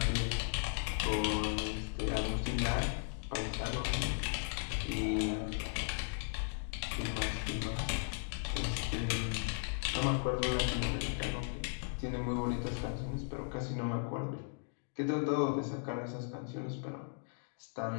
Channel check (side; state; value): right; silent; digital silence